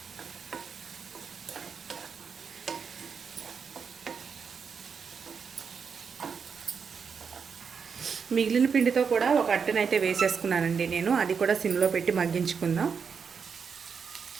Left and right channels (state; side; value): quieter; left; 6.1 dB